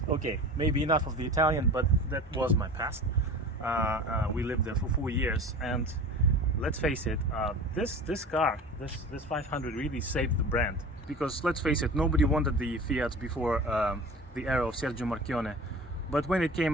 Okay, maybe enough of the Italian, but that was my past. We lived there for 4 years, and let's face it, this car, this 500 really saved the brand. Because let's face it, nobody wanted the Fiat before the era of Sergio Marchionne. But when it came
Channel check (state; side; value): normal; both; correlation 0.37